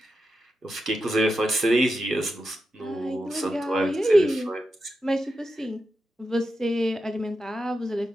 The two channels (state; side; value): normal; both; correlation 0.89